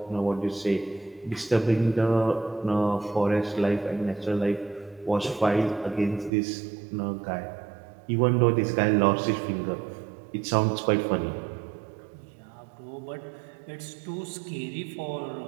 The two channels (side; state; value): left; drops out; at 6.3 s